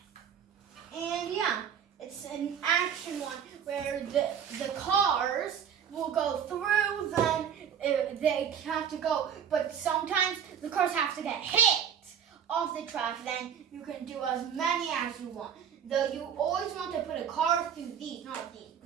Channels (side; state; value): left; quieter; 8.2 dB